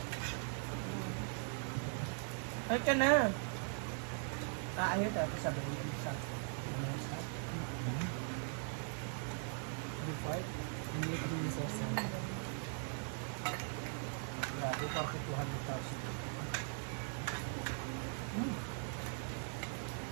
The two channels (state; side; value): silent; left; 51 dB below the other